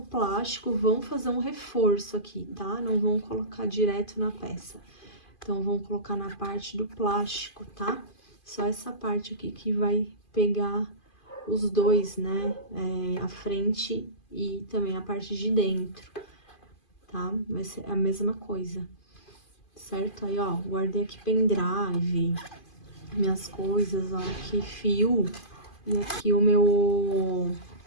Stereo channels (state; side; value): late; right; 2.5 ms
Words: vão fazer um reforço aqui, tá? Não vão colocar direto na peça. Então, vão colocar na parte do plástico, tá? Só essa parte aqui que vai pegar os dois, né? A frente e também a parte de dentro, tá? Vai ser a mesma coisa, certo? Aí, ó, guardei aqui pendrive, minhas coisas, ó, aqui fio e aqui o meu